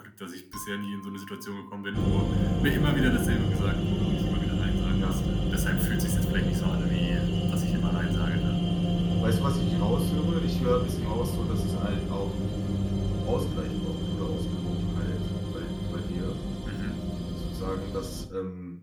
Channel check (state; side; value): identical; both; correlation 1.00